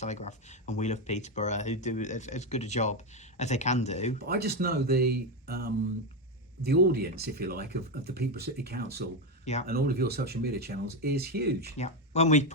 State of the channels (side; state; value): both; normal; correlation 0.09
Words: and We Love Peterborough, who do as good a job as they can do. But I just know the audience, if you like, of the Peterborough City Council and all of your social media channels is huge. Yeah. When we